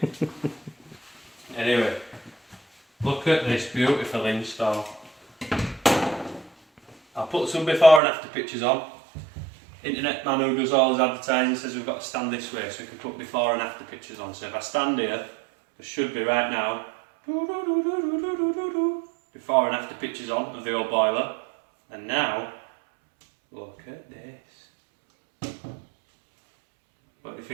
Anyway, look at this beautiful install. I'll put some before and after pictures on. Internet man who does all his advertising says we've got to stand this way so we can put before and after pictures on. So if I stand here, there should be right now before and after pictures on of the old boiler. And now, look at this. What do you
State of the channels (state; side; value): drops out; left; at 8.0 s